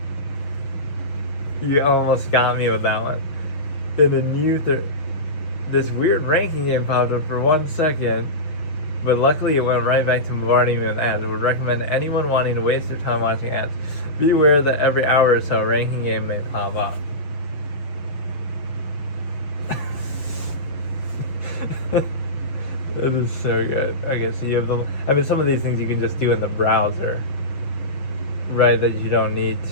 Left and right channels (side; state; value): right; late; 6.5 ms